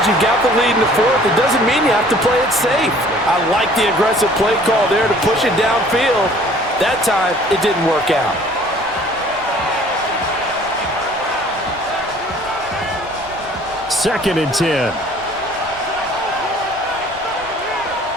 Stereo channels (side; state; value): right; noise; rumble, 22 dB below the sound